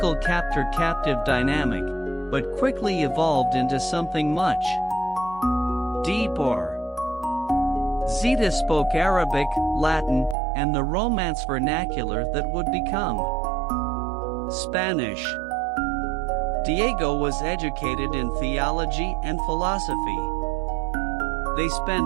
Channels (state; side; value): drops out; left; at 10.4 s